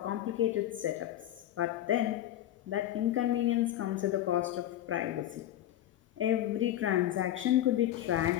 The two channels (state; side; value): quieter; right; 12.6 dB